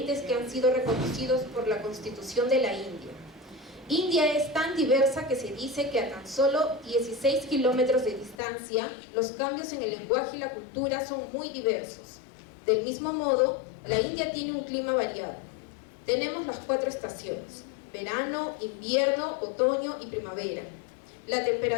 que han sido reconocidos por la Constitución de la India. India es tan diversa que se dice que a tan solo 16 kilómetros de distancia, los cambios en el lenguaje y la cultura son muy diversos. Del mismo modo, la India tiene un clima variado. Tenemos las 4 estaciones: verano, invierno, otoño y primavera. La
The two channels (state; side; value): drops out; right; at 8.4 s